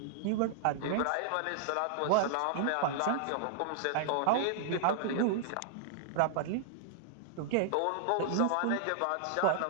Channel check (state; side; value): different; both; correlation -0.01